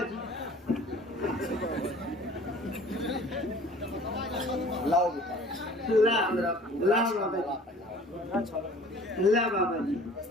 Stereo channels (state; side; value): normal; both; correlation 0.49